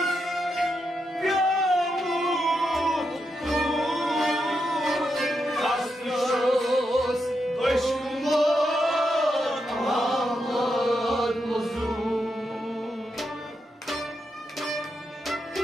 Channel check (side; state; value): both; normal; correlation 0.84